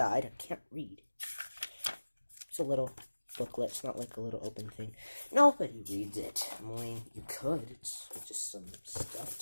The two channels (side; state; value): both; inverted; correlation -1.00